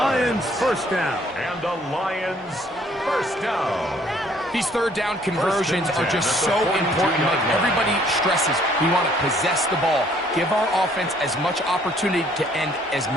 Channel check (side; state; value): both; normal; correlation 0.62